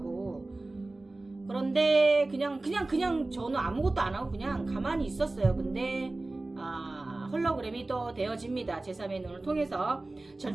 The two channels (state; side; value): quieter; left; 3.0 dB